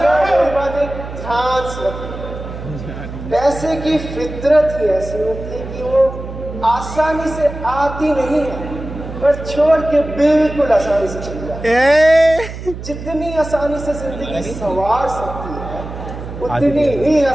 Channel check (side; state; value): right; noise; hum, 10 dB below the sound